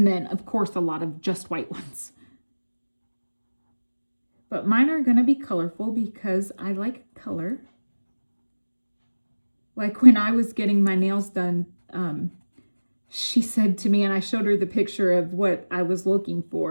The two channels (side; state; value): both; inverted; correlation -1.00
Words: then, of course, a lot of just white ones. But mine are going to be colorful because I like color. Like when I was getting my nails done, she said to me, and I showed her the picture of what I was looking